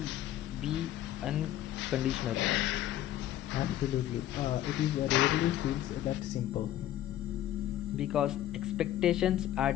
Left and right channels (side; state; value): right; quieter; 12.8 dB